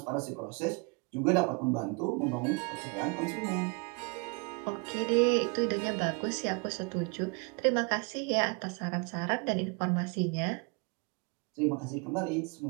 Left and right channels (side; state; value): left; quieter; 31.3 dB